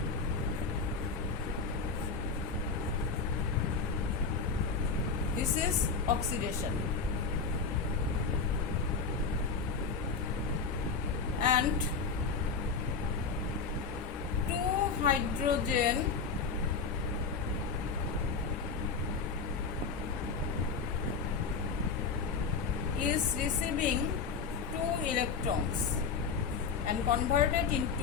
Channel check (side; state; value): right; quieter; 5.1 dB